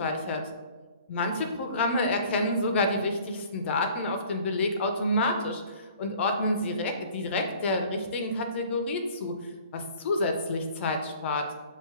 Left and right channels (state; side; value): inverted; both; correlation -0.50